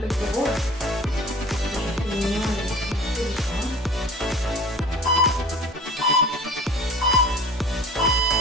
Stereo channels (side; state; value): both; normal; correlation 0.42